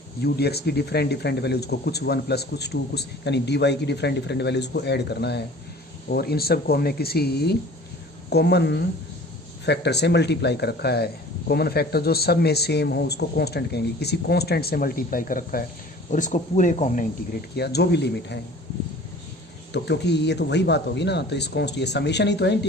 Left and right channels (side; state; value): both; normal; correlation 0.46